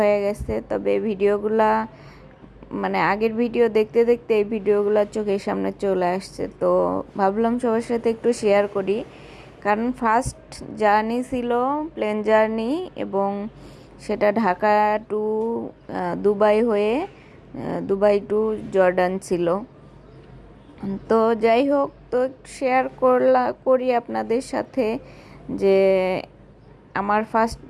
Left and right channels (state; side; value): identical; both; correlation 1.00